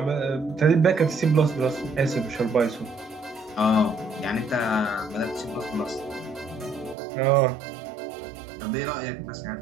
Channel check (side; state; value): left; drops out; at 7.0 s